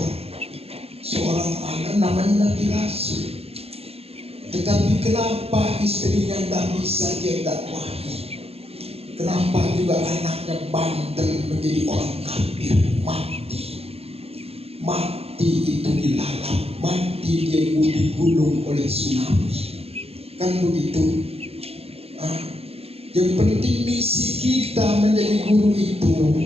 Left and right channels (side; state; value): left; late; 0.29 ms